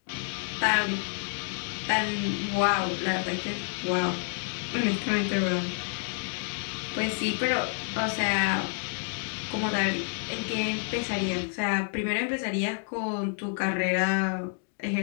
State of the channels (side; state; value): right; silent; 57 dB below the other